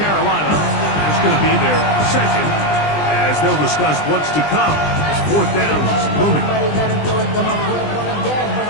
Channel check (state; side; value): late; right; 20 ms